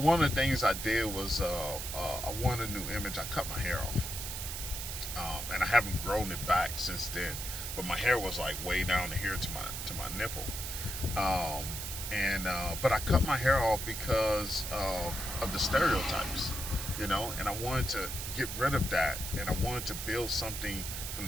of the things I did was I wanted a new image. I cut my hair off, and I haven't grown it back since then. But my hair was like way down here to my nipple. And but I cut my hair off because of the stereotypes, you know, and I wanted to get rid of that, and I wanted to build something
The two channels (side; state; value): right; noise; hiss, 6 dB below the sound